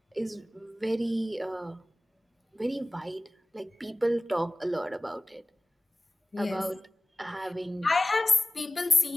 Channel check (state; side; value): normal; both; correlation 0.97